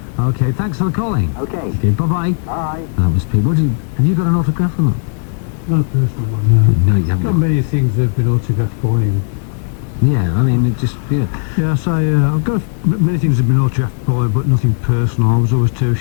Okay, thanks for calling. Okay. Okay, bye-bye. Bye. That was Pete. Have you got an autograph or not? Not a personal one, no. No, you haven't. Got many things that have been autographed by him. Yeah, I mean, it just, yeah. Yeah, I say, I've got many things that have been autographed by him, but nothing personal. I was always too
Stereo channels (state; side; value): silent; right; digital silence